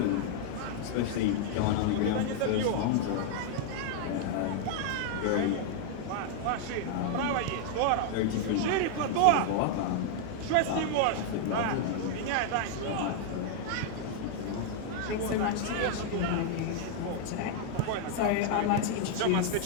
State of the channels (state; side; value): different; both; correlation -0.01